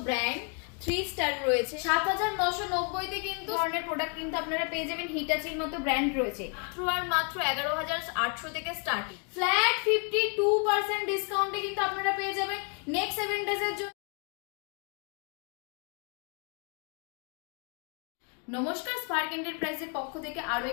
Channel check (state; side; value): quieter; right; 37.4 dB